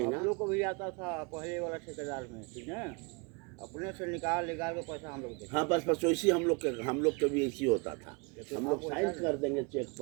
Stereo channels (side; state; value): left; quieter; 30.8 dB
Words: हम लोग को भी आता था पहले वाला ठेकेदार में, ठीक है, अपने से निकाल के पैसा हम लोग देते। हाँ बस वैसे हम लोग के भी ऐसी होता था। हम लोग साइन कर देंगे चेक